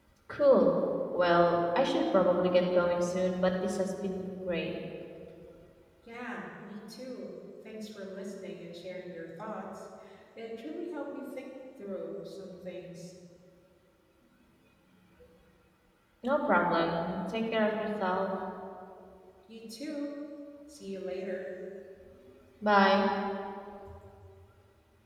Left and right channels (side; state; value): both; identical; correlation 1.00